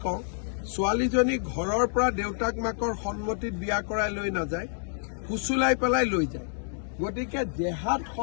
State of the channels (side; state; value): right; silent; digital silence